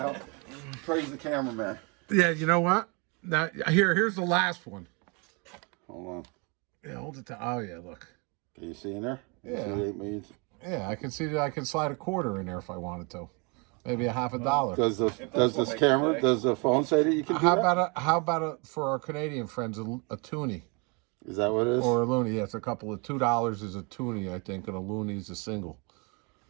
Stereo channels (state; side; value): quieter; left; 31.7 dB